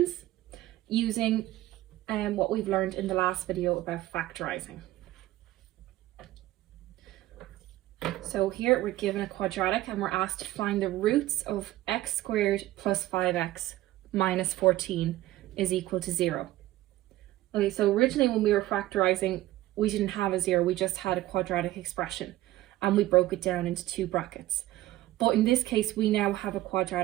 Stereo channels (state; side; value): quieter; left; 15.9 dB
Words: using what we've learned in the last video about factorising. So here we're given a quadratic and we're asked to find the roots of x squared plus 5x minus 14 is equal to 0. Okay, so originally when we were factorising, we didn't have a 0, we just had a quadratic expression and we broke it down into two brackets. But in this case, we now have a